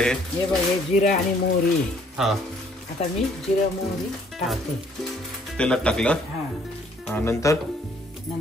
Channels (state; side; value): normal; both; correlation 0.62